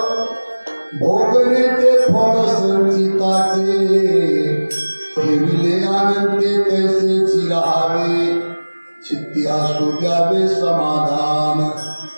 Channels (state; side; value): inverted; both; correlation -1.00